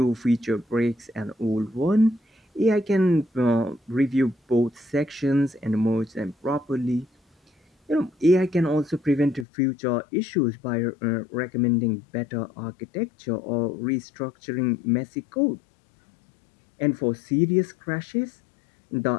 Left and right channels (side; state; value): right; drops out; at 9.5 s